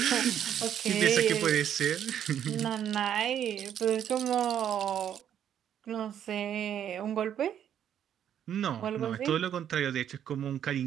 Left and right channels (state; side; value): quieter; left; 9.7 dB